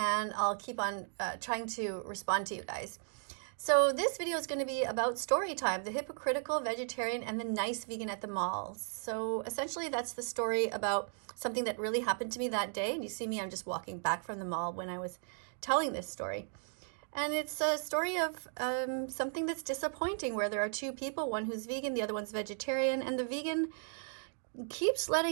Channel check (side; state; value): left; silent; 54 dB below the other